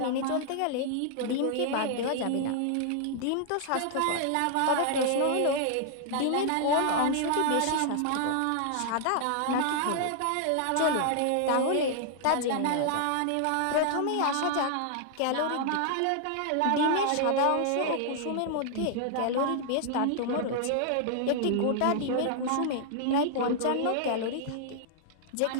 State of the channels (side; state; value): both; different; correlation -0.01